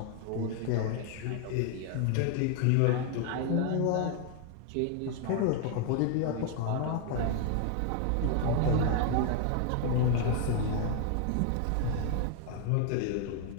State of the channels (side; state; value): both; different; correlation 0.00